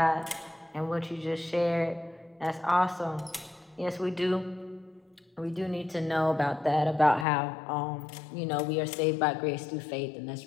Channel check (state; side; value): drops out; right; at 7.2 s